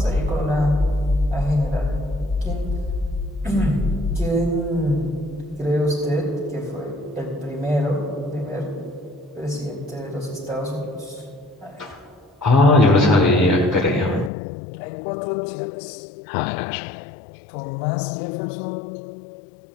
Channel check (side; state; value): right; drops out; at 14.3 s